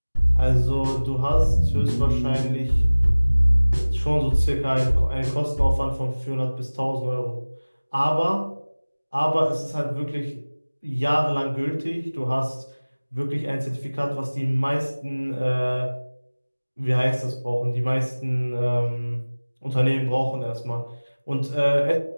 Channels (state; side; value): inverted; both; correlation -1.00